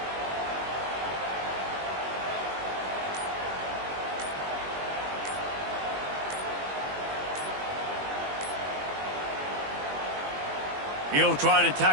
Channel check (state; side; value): late; left; 21 ms